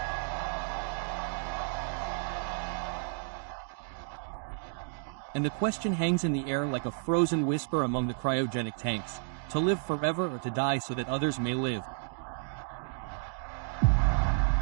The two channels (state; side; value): silent; left; 57 dB below the other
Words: And the question hangs in the air like a frozen whisper among the cryogenic tanks: to live forever or to die so that others may live.